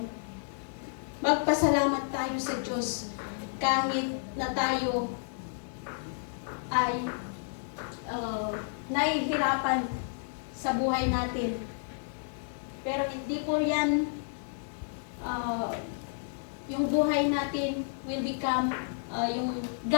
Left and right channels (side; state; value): right; silent; digital silence